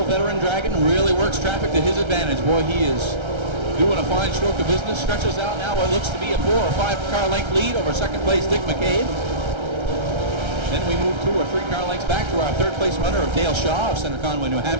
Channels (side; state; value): left; late; 1.3 ms